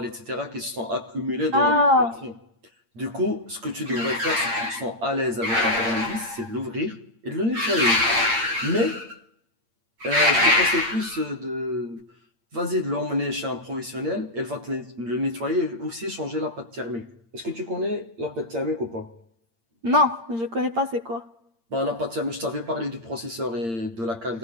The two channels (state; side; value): late; left; 8.8 ms